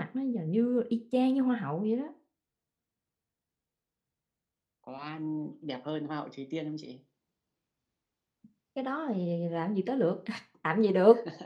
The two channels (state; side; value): identical; both; correlation 1.00